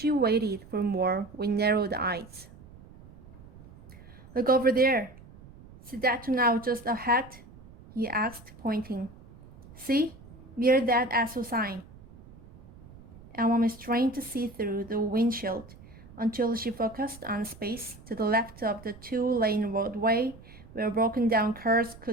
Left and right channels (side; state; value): right; noise; rumble, 20 dB below the sound